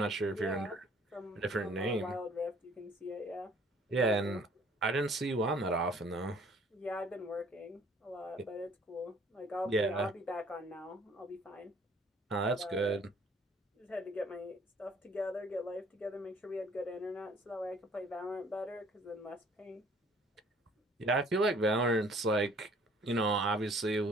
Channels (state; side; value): normal; both; correlation 0.57